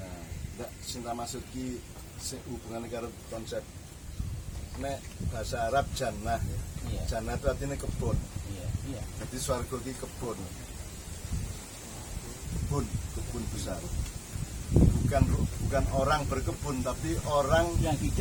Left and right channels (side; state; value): both; identical; correlation 1.00